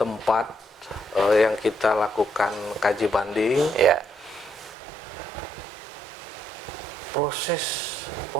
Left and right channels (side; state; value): left; drops out; at 4.8 s